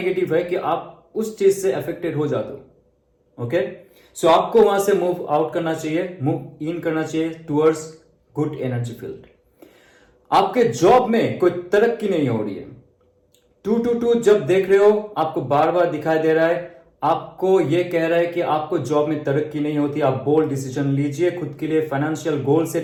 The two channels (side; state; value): both; identical; correlation 1.00